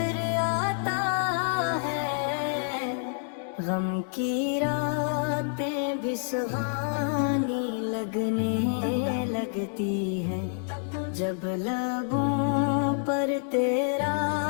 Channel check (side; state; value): right; silent; digital silence